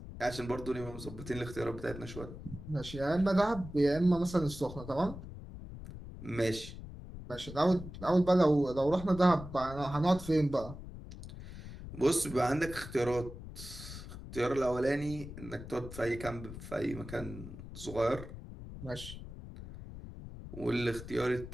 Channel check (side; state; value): left; noise; rumble, 12 dB below the sound